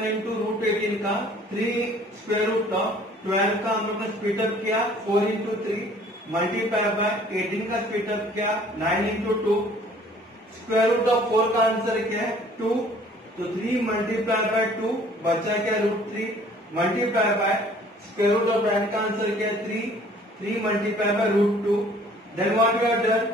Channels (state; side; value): normal; both; correlation 0.54